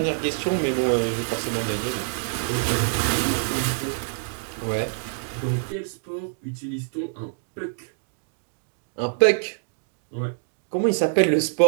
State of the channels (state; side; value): silent; left; digital silence